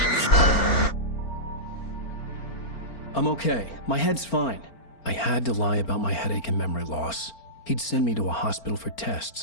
I'm okay. My head's fine. I had to lie about my headache and memory loss. He'd send me to a hospital for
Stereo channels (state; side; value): late; right; 4.4 ms